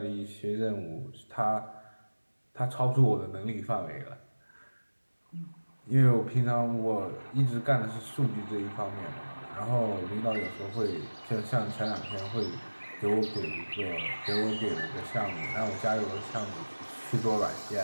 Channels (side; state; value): both; inverted; correlation -1.00